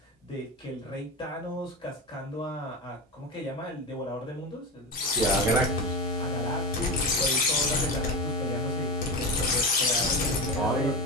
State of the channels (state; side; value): normal; both; correlation 0.20